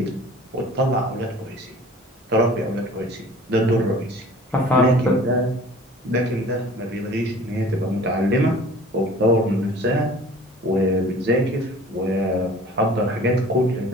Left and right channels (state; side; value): normal; both; correlation 0.47